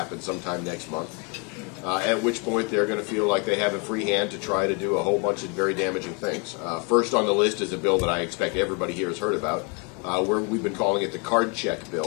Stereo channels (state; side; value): quieter; right; 33.2 dB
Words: sometime next month, at which point they're going to feel like they have a free hand to try to do a whole bunch of very damaging things. First on the list is a bill that I expect everybody here has heard about. We've been calling it the card check